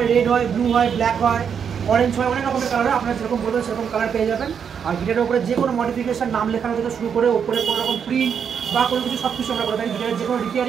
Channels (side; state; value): left; quieter; 7.3 dB